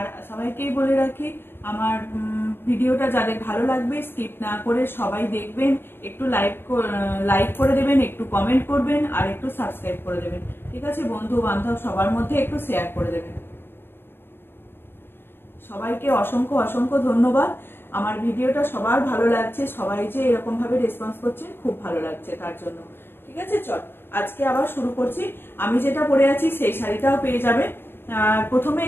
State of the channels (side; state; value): right; late; 0.11 ms